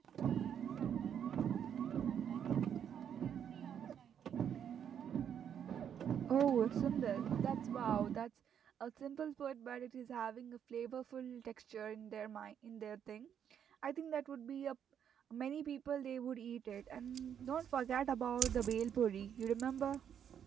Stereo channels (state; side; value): quieter; left; 8.7 dB